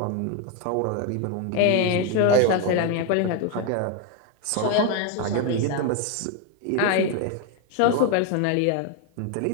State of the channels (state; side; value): different; both; correlation 0.01